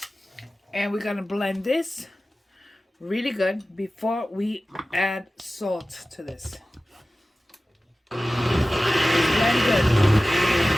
And we're going to blend this really good before we add salt to this. good.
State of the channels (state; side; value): normal; both; correlation 0.96